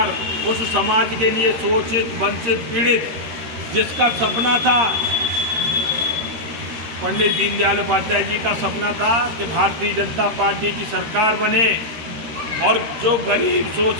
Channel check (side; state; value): left; late; 13 ms